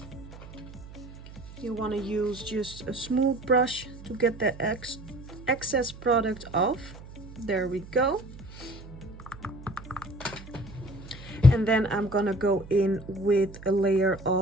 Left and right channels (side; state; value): right; noise; hum, 16 dB below the sound